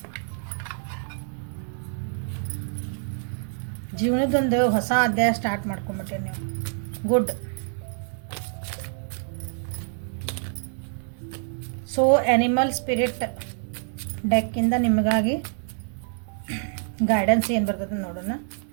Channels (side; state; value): left; silent; digital silence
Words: ಜೀವನದೊಂದು ಹೊಸ ಅಧ್ಯಾಯ ಸ್ಟಾರ್ಟ್ ಮಾಡ್ಕೊಂಬಿಟ್ಟೆ ನೀವು. ಗುಡ್. ಸೊ ಆ್ಯನಿಮಲ್ ಸ್ಪಿರಿಟ್ ಡೆಕ್ಕಿಂದ ನಿಮಗಾಗಿ ಗೈಡೆನ್ಸ್ ಏನು ಬರ್ತದೆ ನೋಡೋಣ